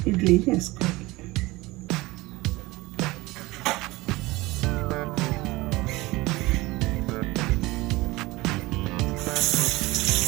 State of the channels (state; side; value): quieter; left; 20.9 dB